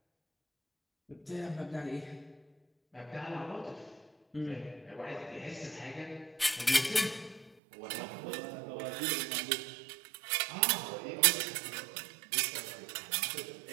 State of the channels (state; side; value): drops out; left; at 7.6 s